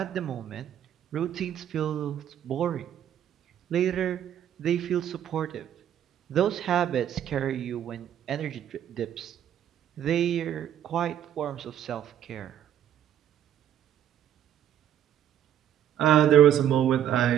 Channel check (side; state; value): left; quieter; 10.3 dB